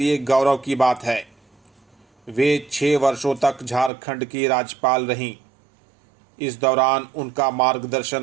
गौरव की बात है। वे 6 वर्षों तक झारखंड की राज्यपाल रहीं। इस दौरान उनका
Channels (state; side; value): drops out; left; at 3.9 s